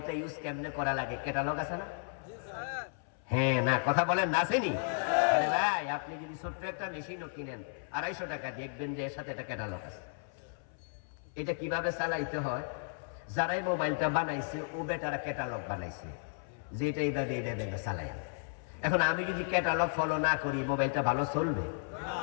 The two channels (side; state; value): right; silent; 55 dB below the other